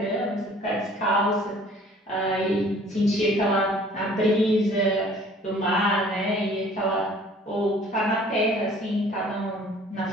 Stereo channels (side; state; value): both; normal; correlation 0.53